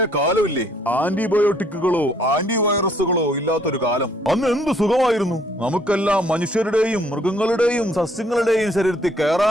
കാലമില്ലേ, ആന്റിബയോട്ടിക്കുകളോ ആന്റിവൈറസുകളോ ഇല്ലാത്തൊരു കാലം. അന്ന് എന്ത് സുഖമായിരുന്നു. നമുക്കെല്ലാം മനുഷ്യരുടെയും മൃഗങ്ങളുടെയും സസ്യങ്ങളുടെയും ശരീരത്തിൽ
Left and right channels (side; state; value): both; normal; correlation 0.65